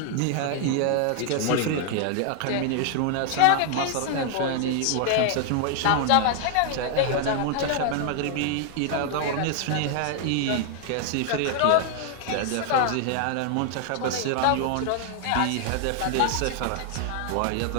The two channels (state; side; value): different; both; correlation 0.00